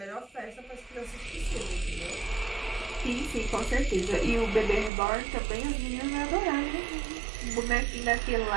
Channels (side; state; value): left; drops out; at 4.9 s